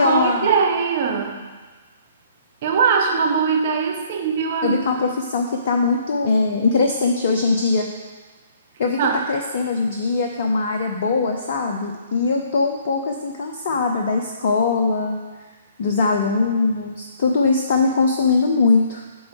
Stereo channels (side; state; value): both; inverted; correlation -0.62